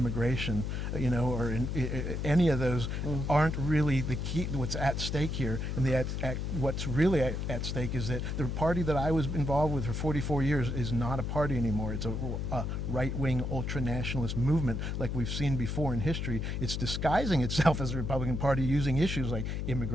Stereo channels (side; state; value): left; noise; hum, 2 dB below the sound